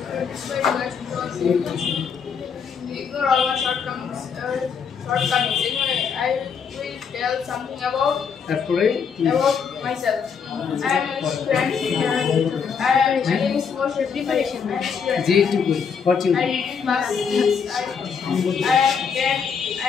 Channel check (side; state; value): right; quieter; 6.4 dB